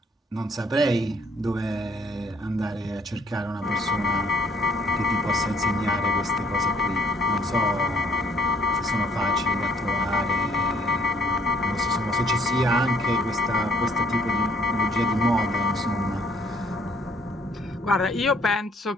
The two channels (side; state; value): both; normal; correlation 0.62